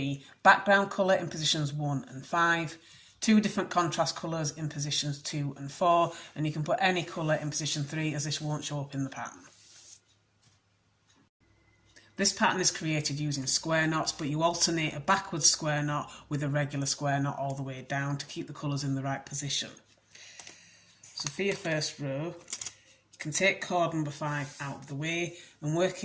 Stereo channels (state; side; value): identical; both; correlation 1.00